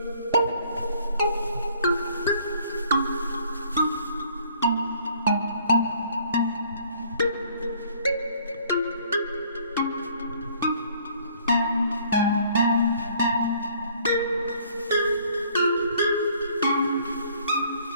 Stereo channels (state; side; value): inverted; both; correlation -0.59